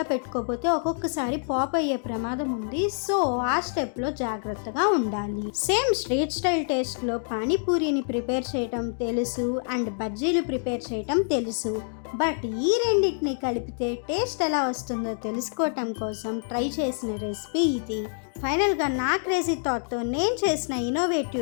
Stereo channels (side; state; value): right; silent; digital silence